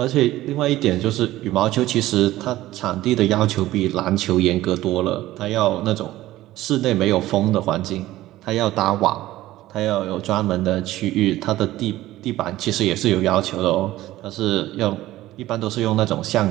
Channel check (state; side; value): quieter; left; 15.8 dB